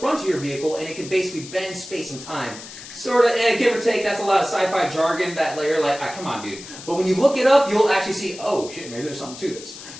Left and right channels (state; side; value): noise; left; hiss, 14 dB below the sound